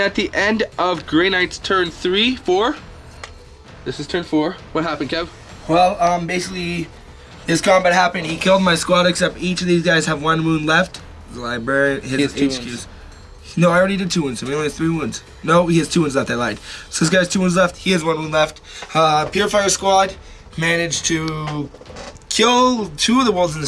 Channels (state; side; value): identical; both; correlation 1.00